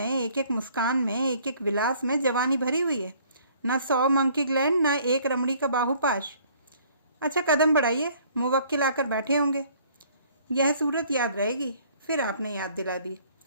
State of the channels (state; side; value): inverted; both; correlation -0.58